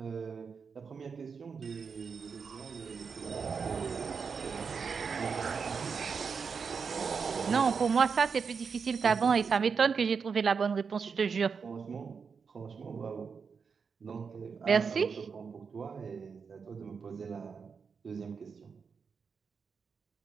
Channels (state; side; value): quieter; left; 5.7 dB